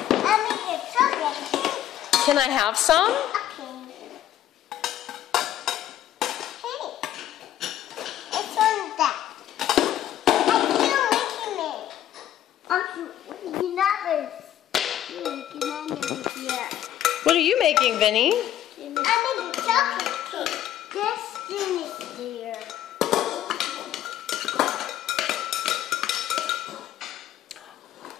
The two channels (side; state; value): right; quieter; 11.9 dB